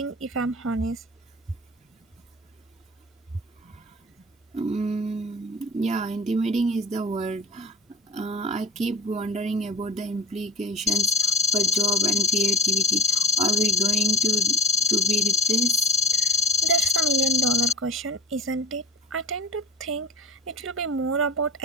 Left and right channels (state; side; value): normal; both; correlation 0.33